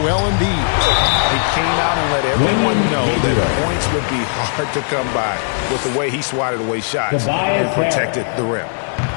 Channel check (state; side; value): silent; right; digital silence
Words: Embiid. He came out and let everyone know that points would be hard to come by with the way he swatted away shots and protected the rim.